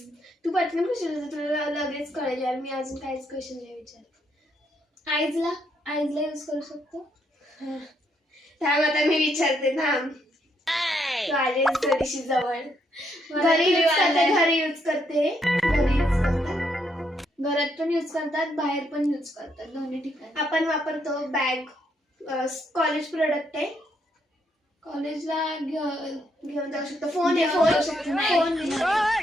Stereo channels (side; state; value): both; normal; correlation 0.75